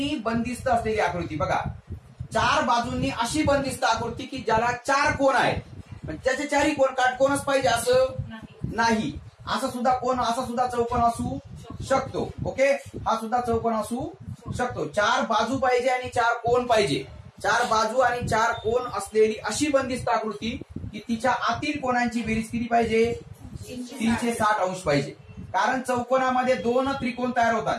बंदिस्त असलेली आकृती। बघा, चार बाजूंनी अशी बंदिस्त आकृती की ज्याला चार कोन आहेत, पण त्याचे चारही कोन काटकोनच पाहिजे असं नाही। असा सुद्धा चौकोन असू शकतो। ओके, हा सुद्धा चौकोन असू शकतो। चार बाजू पाहिजे आणि चार कोन पाहिजे। चार बाजू आणि चार कोन असलेली अशी बंदिस्त आकृती की तिच्या आतील कोनांची बेरीज किती पाहिजे, 360 अंश पाहिजे। कारण चौकोनामध्ये दोन त्रिकोण तयार होतात।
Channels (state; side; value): identical; both; correlation 1.00